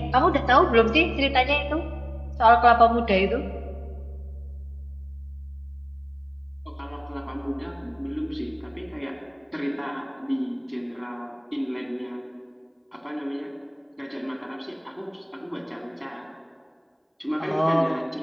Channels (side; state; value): both; identical; correlation 1.00